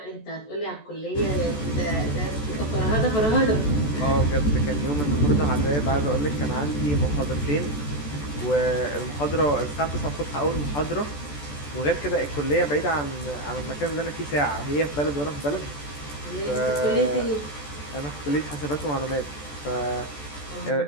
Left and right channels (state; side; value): late; right; 14 ms